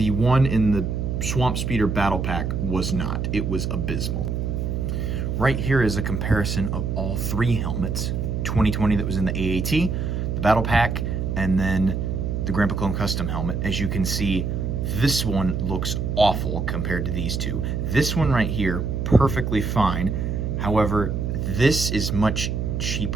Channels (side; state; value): right; noise; hum, 1 dB below the sound